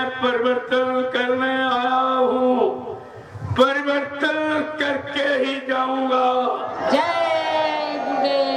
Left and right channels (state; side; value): identical; both; correlation 1.00